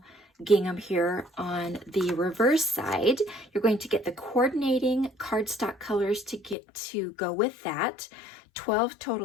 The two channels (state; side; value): drops out; right; at 6.6 s